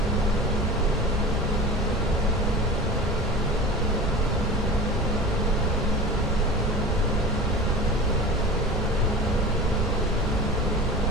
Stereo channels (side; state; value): both; normal; correlation 0.37